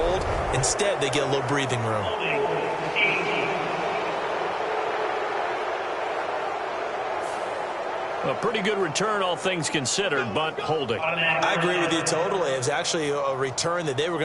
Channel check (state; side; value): identical; both; correlation 1.00